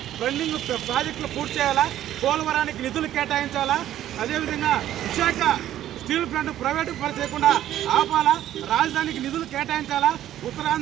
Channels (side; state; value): left; quieter; 12.3 dB